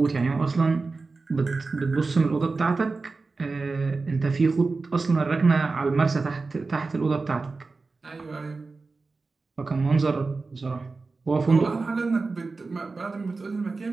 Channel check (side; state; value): left; quieter; 3.9 dB